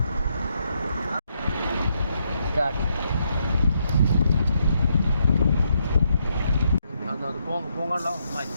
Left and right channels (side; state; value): both; inverted; correlation -0.77